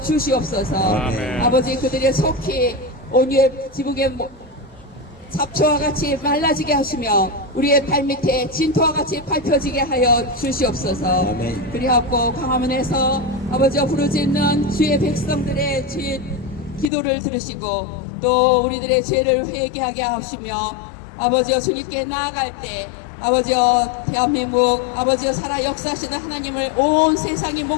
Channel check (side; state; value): right; drops out; at 16.9 s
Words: 주시옵소서. 아멘. 아버지 그들의 속히 온유의 지붕에 잡초와 같이 말라지게 하시며 우리의 발밑에 진토와 같이 밟혀지게 하여 주시옵소서. 아멘. 그리하고 광화문에서 아버지와 부르짖는 주의 백성들의 기도를 들으시고 또 우리들의 죄를 회개하게 하시며 아버지여 주님께 나아갈 때 아버지여 대한민국 아버지여 살아 역사하시는 하나님을 온 세상이